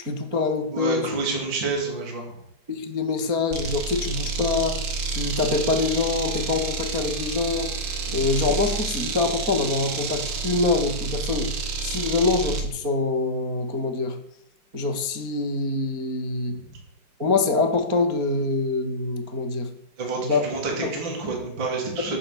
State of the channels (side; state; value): left; late; 4.4 ms